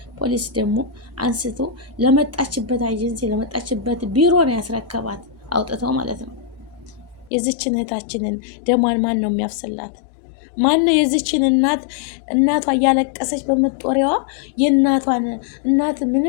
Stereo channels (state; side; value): drops out; right; at 7.3 s